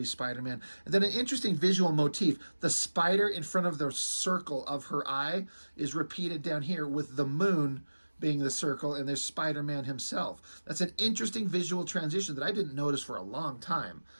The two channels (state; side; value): inverted; both; correlation -1.00